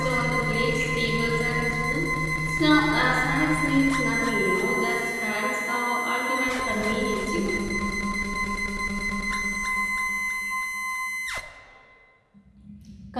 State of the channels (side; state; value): both; identical; correlation 1.00